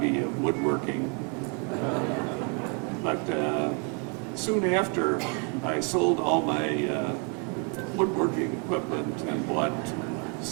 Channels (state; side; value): quieter; left; 35.7 dB